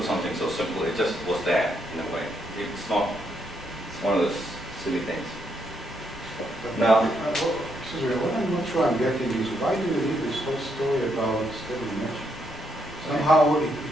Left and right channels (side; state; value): both; normal; correlation 0.77